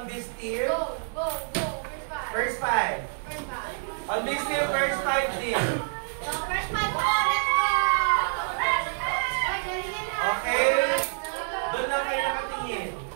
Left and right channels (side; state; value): left; silent; digital silence